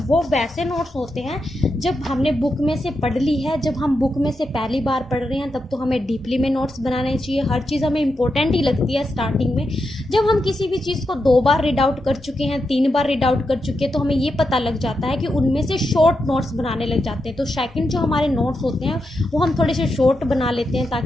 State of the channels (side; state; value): both; normal; correlation 0.86